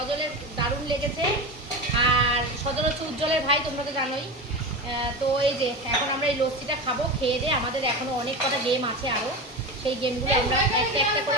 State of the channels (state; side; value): normal; both; correlation 0.24